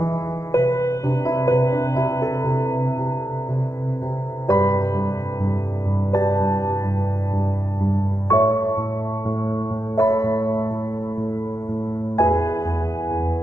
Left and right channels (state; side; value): late; right; 0.15 ms